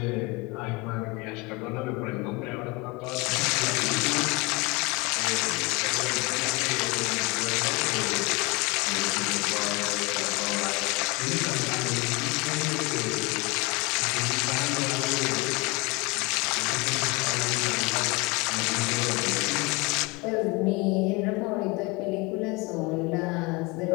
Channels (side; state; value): right; quieter; 26.2 dB